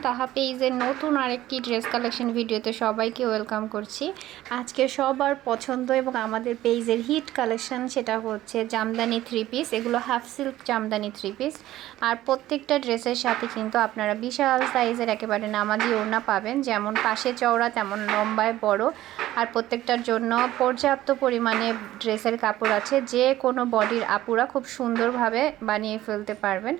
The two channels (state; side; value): quieter; left; 14.8 dB